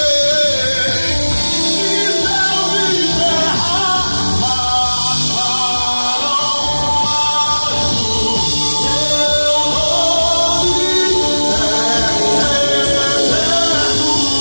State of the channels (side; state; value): both; inverted; correlation -1.00